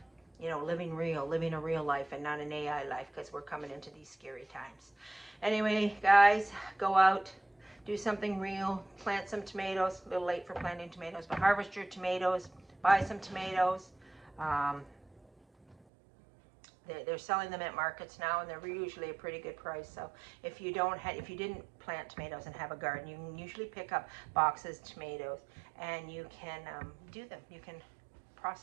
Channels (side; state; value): left; drops out; at 15.8 s